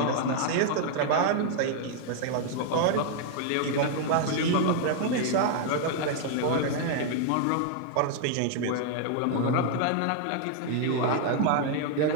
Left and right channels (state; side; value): different; both; correlation 0.00